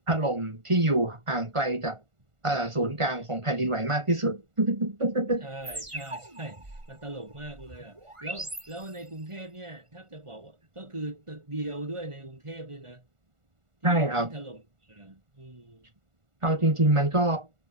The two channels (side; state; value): left; late; 1.4 ms